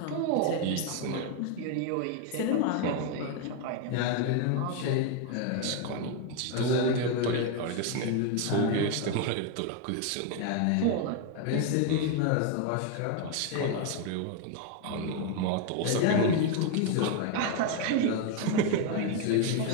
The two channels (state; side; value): different; both; correlation 0.01